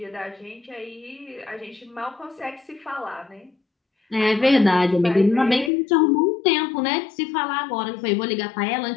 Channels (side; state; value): right; drops out; at 5.7 s